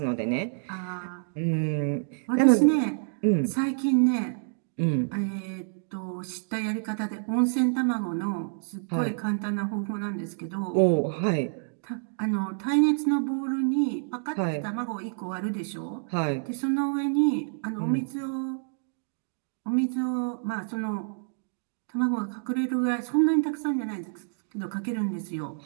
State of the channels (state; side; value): silent; left; digital silence